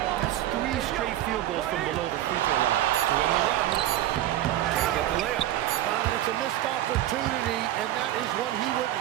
That's 3 straight field goals from below the free throw line. To win the run. Can't get the layup. It's a missed opportunity, and that is one he would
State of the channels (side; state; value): left; quieter; 13.3 dB